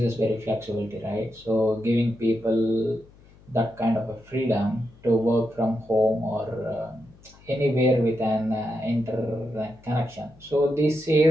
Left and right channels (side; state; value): left; noise; hum, 26 dB below the sound